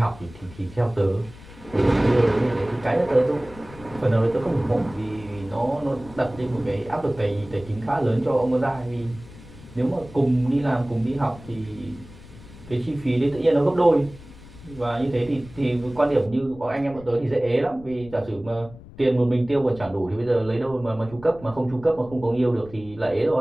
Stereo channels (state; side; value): noise; left; rumble, 19 dB below the sound